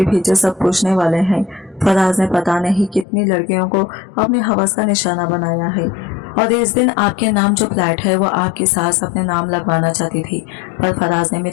पीछे सब पूछने वाले हैं। फराज ने पता नहीं कितनी लड़कियों को अपने हवस का निशाना बनाया है और इस दिन आपके नाम जो फ्लैट है वो आपकी सास अपने नाम लगवाना चाहती थी, पर फराज ने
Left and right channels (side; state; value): right; drops out; at 3.1 s